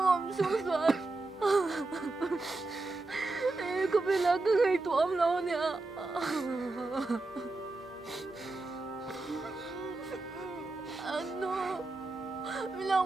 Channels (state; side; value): quieter; left; 3.2 dB